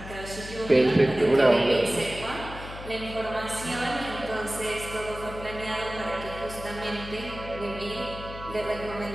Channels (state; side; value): noise; left; hum, 12 dB below the sound